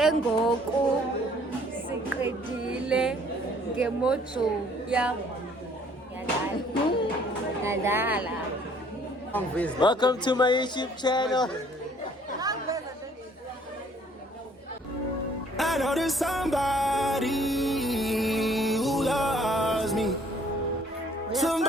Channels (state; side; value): normal; both; correlation 0.59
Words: ngoku. Siqedile ngemojo yam. Yadala. Welcome to my YouTube channel. I know there's somebody who loves me.